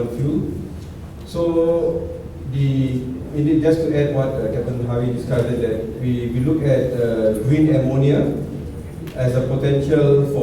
fuel. So just to add what Captain Harry discussed, that we look at green ammonia as a potential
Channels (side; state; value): both; identical; correlation 1.00